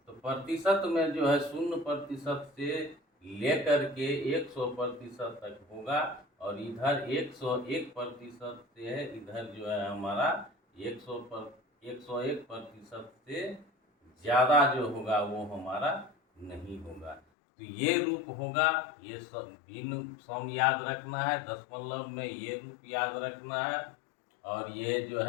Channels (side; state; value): right; drops out; at 17.2 s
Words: तो प्रतिशत में जो है 0% से लेकर के 100% तक होगा, और इधर 101% से है, इधर जो है हमारा 101% से ज़्यादा जो होगा वो हमारा नहीं होगा। तो ये रूप होगा, ये भिन्न सम याद रखना है, दशमलव में ये रूप याद रखना है, और ये जो